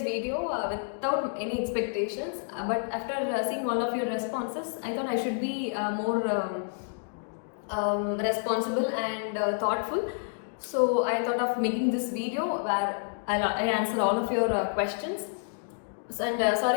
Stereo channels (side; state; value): right; silent; digital silence